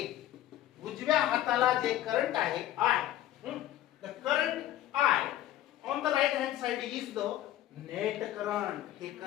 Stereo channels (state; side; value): quieter; right; 13.1 dB